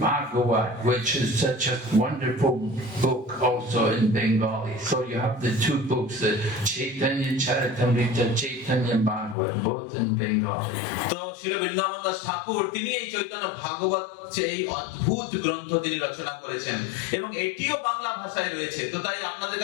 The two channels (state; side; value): drops out; right; at 9.3 s